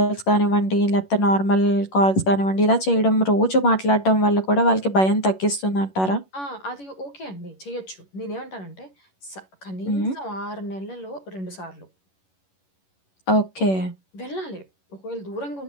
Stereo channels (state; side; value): late; right; 11 ms